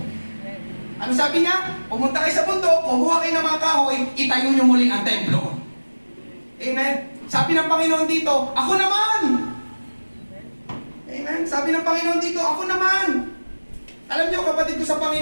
Ano sabi niya? Pumunta kayo sa bundok, kumuha kayo ng mga kahoy, itayo nyo muli ang templo. Amen? Sabi ng Panginoon dito, ako naman! Amen? Sabi ng Panginoon dito, ako naman! Alam niyo, kapatid ko sa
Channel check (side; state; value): both; inverted; correlation -1.00